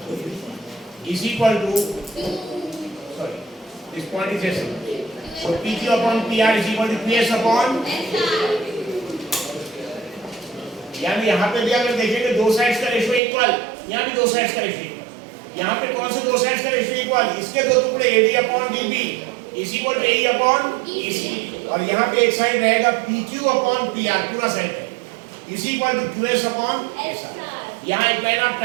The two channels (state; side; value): drops out; left; at 13.2 s